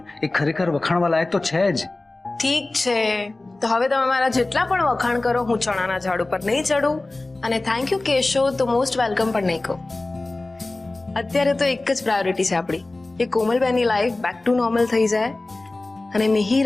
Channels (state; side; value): quieter; right; 3.0 dB